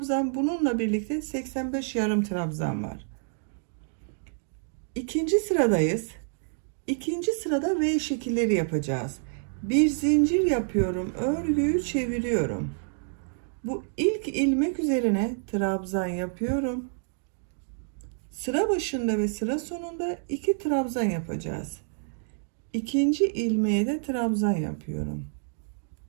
Bununla birlikte 85 yarım trabzan var. İkinci sıradayız. İkinci sırada V şekilleri yapacağız. Bir zincir yapıyorum. Örgüyü çeviriyorum. Bu ilk ilmek üzerine trabzan yapıyorum. Sıra başında ve sıra sonunda 2 trabzan yapacağız. İkinci ilmeğe de trabzan yapıyorum.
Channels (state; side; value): silent; left; digital silence